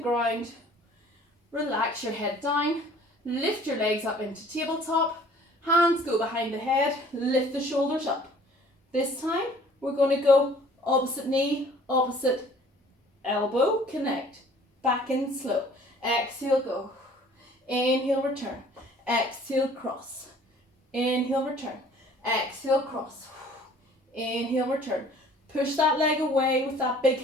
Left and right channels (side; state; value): both; normal; correlation 0.53